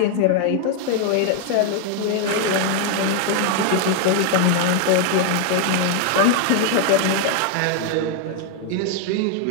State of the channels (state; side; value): different; both; correlation 0.00